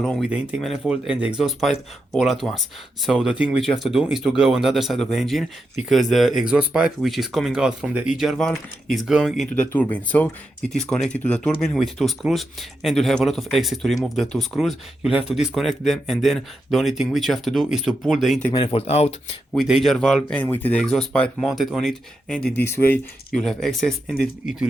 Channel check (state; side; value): normal; both; correlation 0.86